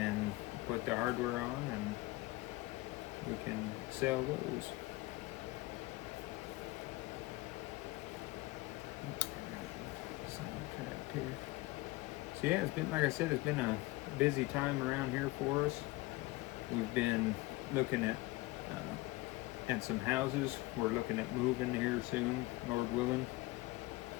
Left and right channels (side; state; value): right; quieter; 20.4 dB